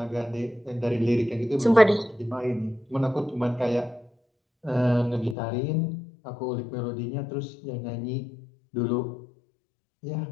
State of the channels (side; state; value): right; drops out; at 5.4 s